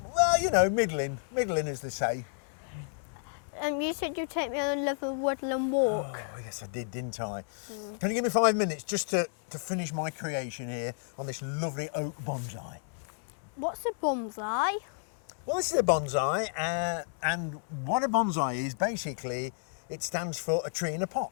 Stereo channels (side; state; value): right; silent; 57 dB below the other